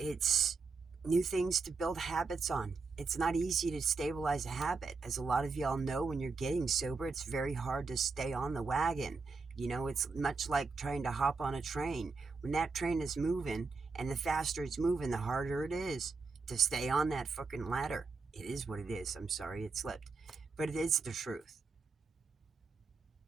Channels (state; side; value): quieter; left; 4.4 dB